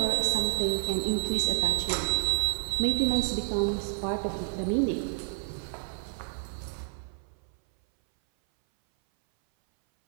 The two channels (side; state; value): left; silent; 58 dB below the other